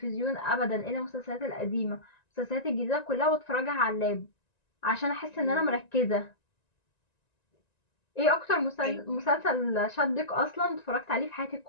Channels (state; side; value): late; right; 1.9 ms